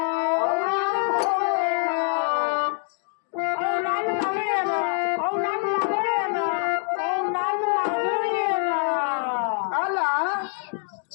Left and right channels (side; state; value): right; silent; 57 dB below the other